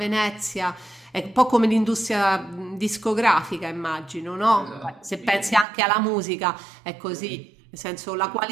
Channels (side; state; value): left; drops out; at 5.7 s